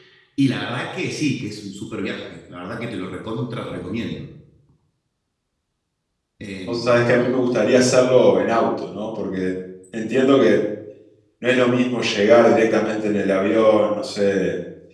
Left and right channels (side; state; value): both; identical; correlation 1.00